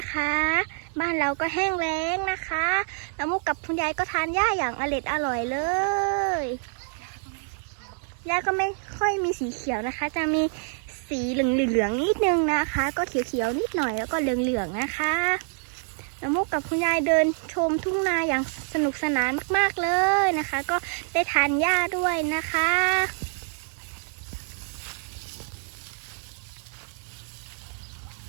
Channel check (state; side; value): silent; left; 57 dB below the other